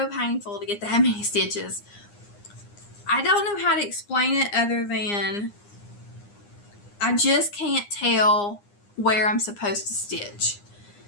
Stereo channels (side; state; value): right; late; 9.8 ms